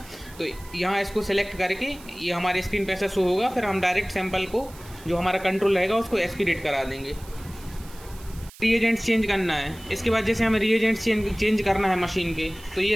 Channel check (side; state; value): right; noise; hiss, 21 dB below the sound